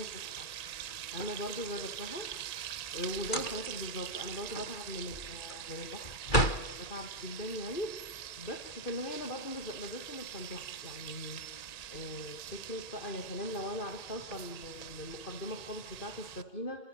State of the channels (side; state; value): right; late; 1.9 ms